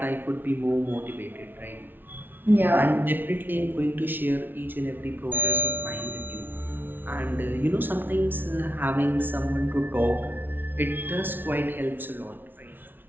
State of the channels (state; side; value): late; left; 0.096 ms